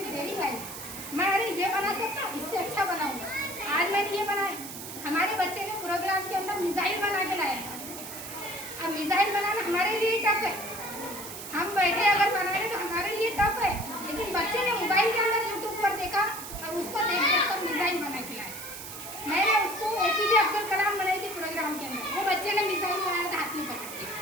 डेयरिंग आई, मैं अरे ये बना सकता हूँ, इससे अच्छा बनाऊंगा। आज मैंने ये बनाया, हमारे बच्चे ने प्रोग्राम के अंदर मिसाइल बना के लाया। अब मिसाइल बनाना हमारे लिए टफ है, हम बैठे अगर बना रहे तो हमारे लिए टफ है, लेकिन बच्चे ने मोबाइल के अंदर यूट्यूब पर देखा और उसको देख देख कर मिसाइल बना के लाया। मैंने उसको APJ अब्दुल कलाम बनाई थी प्रोग्राम के अंदर, वो बच्चे ने मिसाइल बनाया था हाथ में पकड़ के।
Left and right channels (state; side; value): noise; right; hiss, 10 dB below the sound